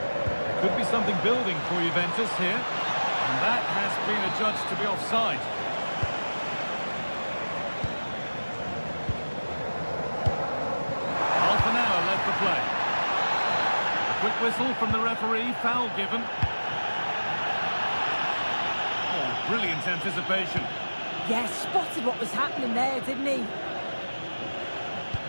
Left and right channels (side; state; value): both; inverted; correlation -1.00